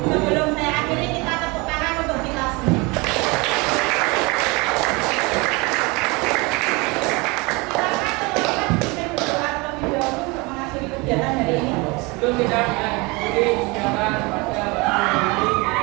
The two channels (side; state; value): left; quieter; 26.1 dB